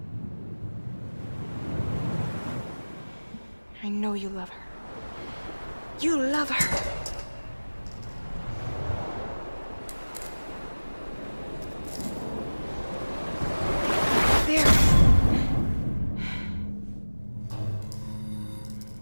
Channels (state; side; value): inverted; both; correlation -1.00